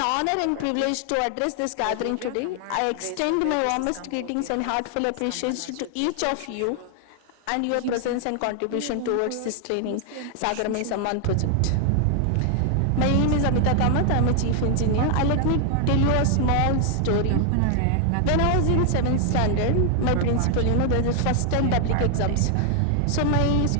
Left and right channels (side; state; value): both; different; correlation 0.00